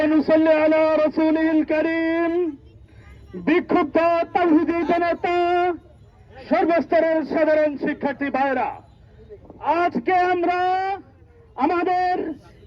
নুসাল্লি আলা রাসূলিল কারীম। বিক্ষুব্ধ তাওহীদি জনতা, সর্বস্তরের সাধারণ শিক্ষার্থী ভাইরা, আজকে আমরা আমাদের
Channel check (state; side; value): identical; both; correlation 1.00